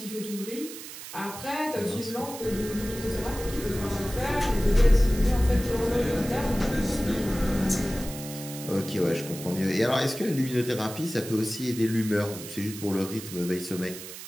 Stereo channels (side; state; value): right; noise; hiss, 12 dB below the sound